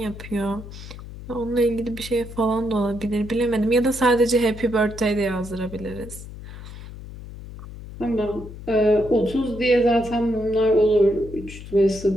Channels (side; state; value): left; noise; hum, 13 dB below the sound